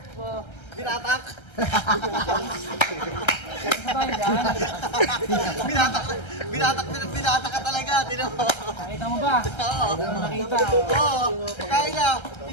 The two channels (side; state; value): right; late; 1.3 ms